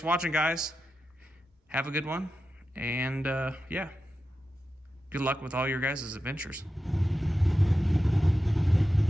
for watching, guys. Have a good one, and yeah, good luck with all your guys' adventures.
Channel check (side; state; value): both; normal; correlation 0.91